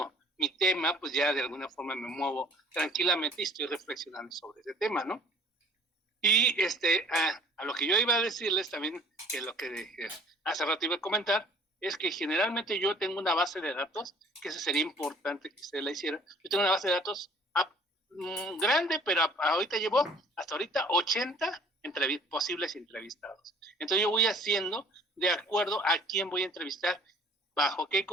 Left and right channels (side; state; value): both; normal; correlation 0.52